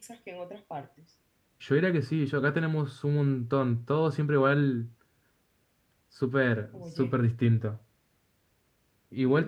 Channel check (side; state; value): both; identical; correlation 1.00